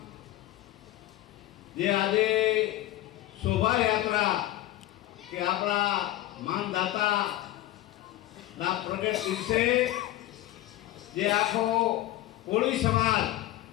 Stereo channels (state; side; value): quieter; right; 15.3 dB